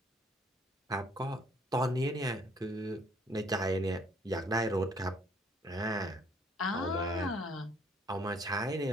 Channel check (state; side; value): normal; both; correlation 0.62